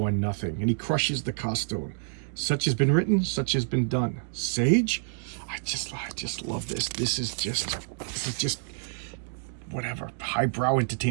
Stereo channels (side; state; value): left; silent; digital silence